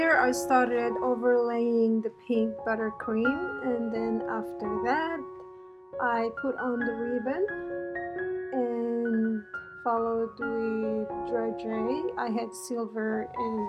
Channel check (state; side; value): identical; both; correlation 1.00